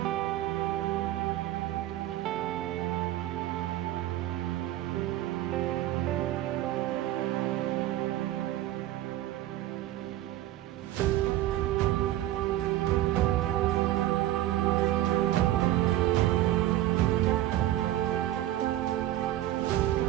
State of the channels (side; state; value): left; quieter; 14.3 dB